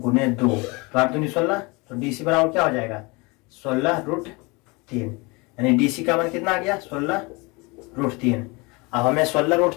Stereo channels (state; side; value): quieter; right; 26.9 dB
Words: 2, तो 8 दूनी 16। तो DC बराबर क्या हो जाएगा, 16/√3। यानी DC का मान कितना आ गया, 16/√3। अब हमें